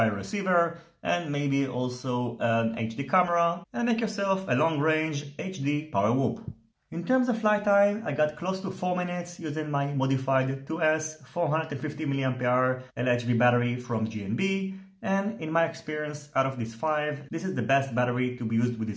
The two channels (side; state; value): both; identical; correlation 1.00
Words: receiver and maybe also an HD camera and make yourself a long-range HD power whoop. In terms of flight time, I got close to 4 minutes using my modified 2S 450 mAh LHV battery from GNB. And in my experience, out of these 5, this is the best battery to be used with